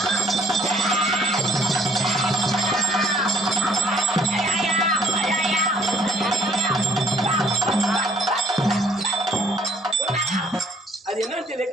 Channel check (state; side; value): normal; both; correlation 0.61